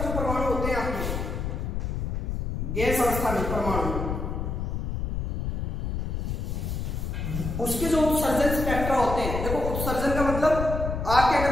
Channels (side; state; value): left; noise; rumble, 2 dB below the sound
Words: जो परमाणु होते हैं आपके, गैस अवस्था में परमाणु, उसके जो उत्सर्जन स्पेक्ट्रा होते हैं, देखो उत्सर्जन का मतलब आप क्या कर